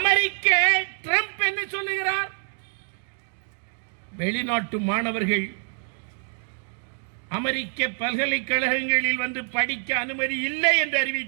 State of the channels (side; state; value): left; silent; 56 dB below the other